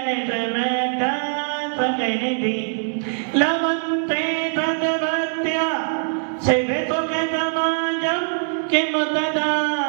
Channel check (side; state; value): left; silent; 61 dB below the other